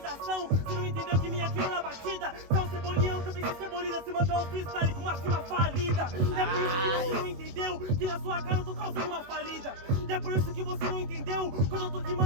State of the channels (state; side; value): late; left; 21 ms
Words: você não entendeu que minha quina na batida. Você é um cebolinhão, também se cebolina, se mandou um freestyle com uma cima falida. É por isso que você não entendeu que na sua cara eu tô causando uma falida. E é por isso que você não entendeu, quando eu tô